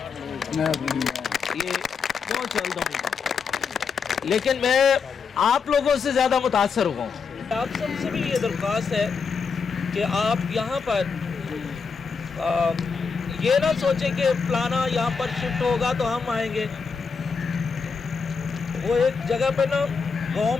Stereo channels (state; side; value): quieter; right; 5.4 dB